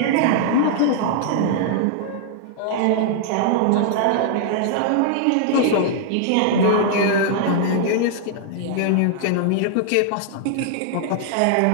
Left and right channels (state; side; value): different; both; correlation -0.01